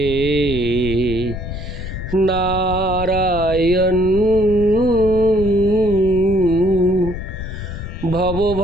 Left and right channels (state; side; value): noise; left; rumble, 8 dB below the sound